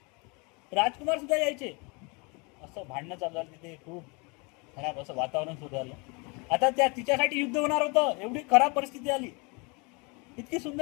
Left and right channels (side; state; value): right; quieter; 30.4 dB